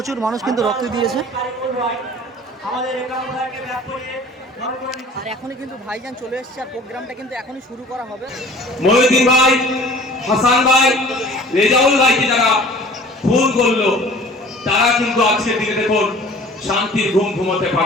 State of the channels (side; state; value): both; normal; correlation 0.46